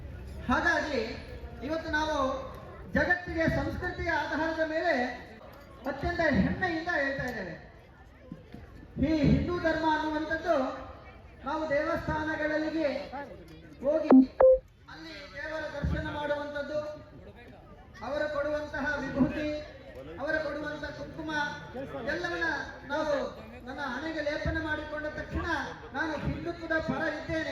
ಹಾಗಾಗಿ ಇವತ್ತು ನಾವು ಜಗತ್ತಿಗೆ ಸಂಸ್ಕೃತಿಯ ಆಧಾರದ ಮೇಲೆ ಅತ್ಯಂತ ಹೆಮ್ಮೆಯಿಂದ ಹೇಳ್ತಾ ಇದ್ದೇವೆ. ಈ ಹಿಂದೂ ಧರ್ಮ ಅನ್ನುವಂಥದ್ದು ನಾವು ದೇವಸ್ಥಾನಗಳಿಗೆ ಹೋಗಿ ಅಲ್ಲಿ ದೇವರ ದರ್ಶನ ಮಾಡುವಂಥದ್ದು, ಅವರು ಕೊಡುವಂತಹ ವಿಭೂತಿ, ಅವರು ಕೊಡುವಂತಹ ಕುಂಕುಮ ಎಲ್ಲವನ್ನ ನಾವು ನನ್ನ ಹಣೆಗೆ ಲೇಪನ ಮಾಡಿಕೊಂಡ ತಕ್ಷಣ ನಾನು ಹಿಂದುತ್ವದ ಪರ ಇದ್ದೇನೆ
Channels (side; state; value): both; identical; correlation 1.00